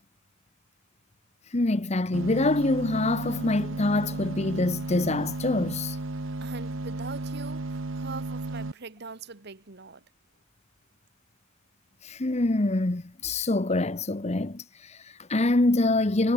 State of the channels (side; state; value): both; normal; correlation 0.60